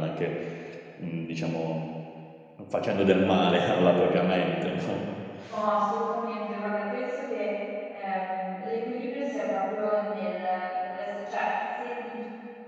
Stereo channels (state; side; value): identical; both; correlation 1.00